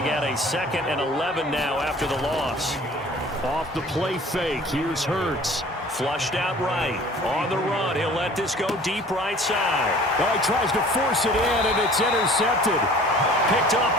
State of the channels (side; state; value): both; normal; correlation 0.49